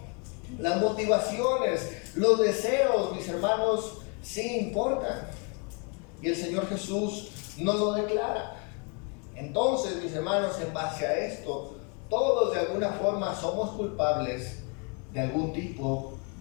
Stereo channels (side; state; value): right; quieter; 35.7 dB